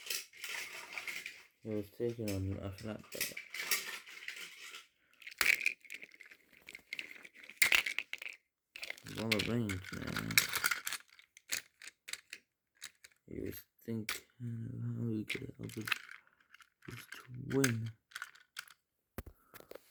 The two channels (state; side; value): identical; both; correlation 1.00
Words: It was taken on a flatbed. It was all arranged, man. He was thinking of how he could help his twin.